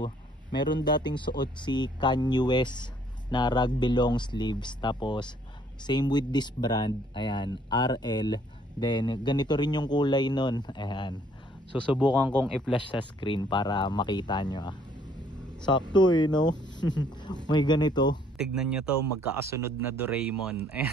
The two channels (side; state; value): both; normal; correlation 0.63